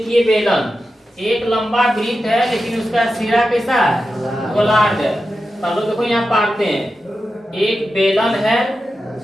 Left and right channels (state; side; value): normal; both; correlation 0.91